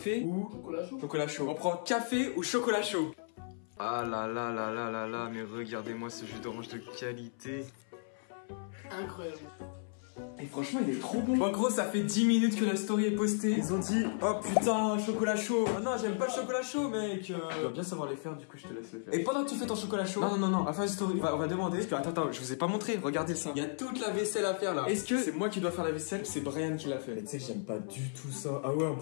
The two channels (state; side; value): silent; right; 55 dB below the other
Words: ou chocolat chaud. On prend café ou chocolat chaud? Ah là là là là là là, mais regardez-moi ce jus d'orange de qualité. Incroyable. Et franchement, il est trop bon. Bon, gros, ça fait 10 minutes que la story est postée. Ils ont dit, oh putain, chocolat chaud. Ah non, j'aime pas le chocolat chaud, mec. Tu dois bien savoir les faire, du coup, je te laisse le faire. Et pendant que tu fais ton chocolat chaud. Non, à la fin de la story, on va demander. Parce que, attends, je vous ai pas montré. Regardez ça. Il y a toute la vaisselle à faire là. Est-ce que c'est moi qui dois faire la vaisselle? C'est Brian qui l'a fait. Mais tu sais, j'aime pas du tout ça. Ah ouais, en